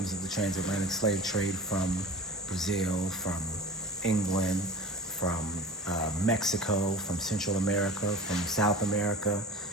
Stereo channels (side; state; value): both; normal; correlation 0.37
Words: of the transatlantic slave trade from Brazil, from England, from Mexico, from Central America, from South America,